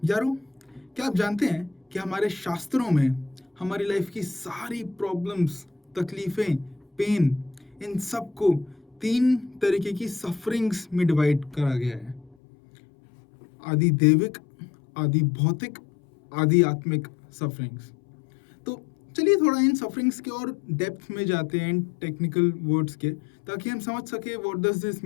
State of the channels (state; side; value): drops out; right; at 12.4 s